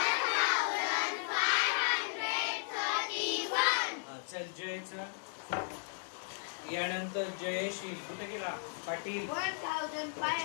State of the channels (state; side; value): silent; right; digital silence